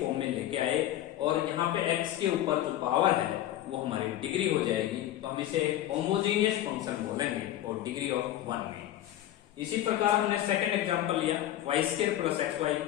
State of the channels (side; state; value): right; quieter; 13.0 dB